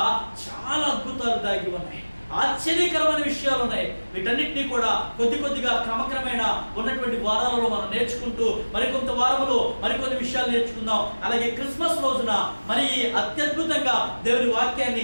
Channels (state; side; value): inverted; both; correlation -1.00